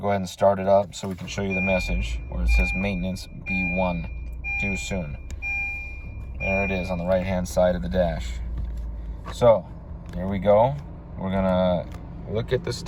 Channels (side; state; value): both; identical; correlation 1.00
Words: go ahead and start it up so we can show you the message where it says maintenance B1, due soon. There it is on the right hand side of the dash. So here we go. We're gonna look at the